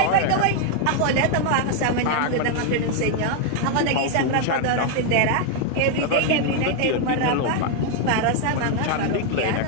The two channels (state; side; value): different; both; correlation 0.01